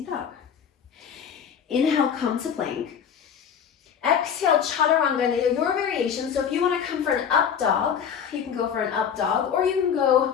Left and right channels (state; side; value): quieter; right; 7.8 dB